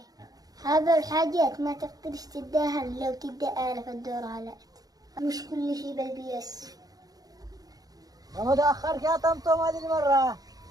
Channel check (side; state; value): left; late; 0.18 ms